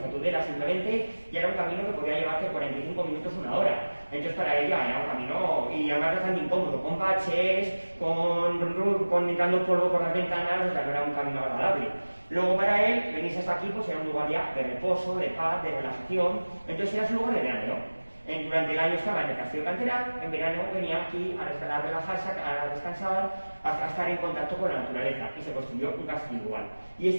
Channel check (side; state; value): both; inverted; correlation -1.00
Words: Tudela simplemente, ya era un camino que podía llevarte 45 minutos, 1 hora. Entonces para ella era un camino, y además bastante incómodo, con baches, con entrando polvo por las ventanas, o sea, no era un camino agradable. Luego para él, venirse hasta aquí, pues era un lugar ya de reposo, de paz, de relajación. Entonces era su lugar de verano. Durante el año estaba en el Castillo de Canterac, en verano venía aquí a relajarse, a descansar, a estar en contacto con la naturaleza, y se construyó un castillo igual. Y